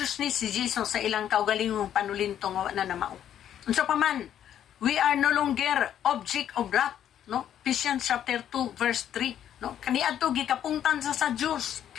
si Jesus sa ilang kaugalingong panulintong na namao. Unsa pa man, we are no longer object of wrath, no? Ephesians chapter 2 verse 3, no? Kaniadto gikapungtan sa Dios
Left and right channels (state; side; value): quieter; right; 10.3 dB